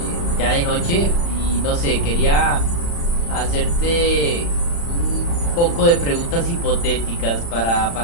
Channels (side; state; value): right; late; 35 ms